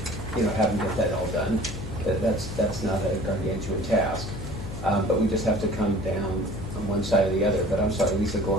do, you know, have them get that all done. That's not a gargantuan task. But we just have to come down on one side or the other. But I'm sorry, Lisa, go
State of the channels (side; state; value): left; noise; hum, 8 dB below the sound